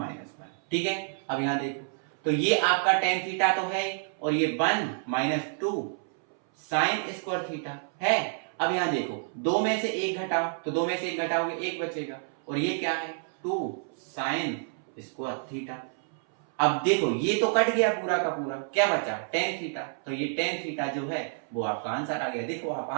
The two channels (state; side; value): silent; left; 59 dB below the other